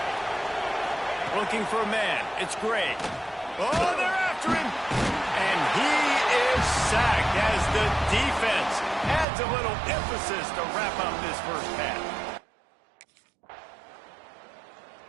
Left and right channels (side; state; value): left; drops out; at 9.2 s